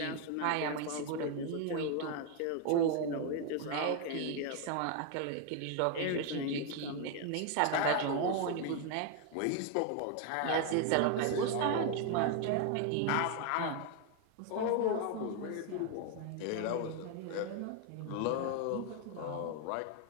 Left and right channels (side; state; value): both; different; correlation 0.01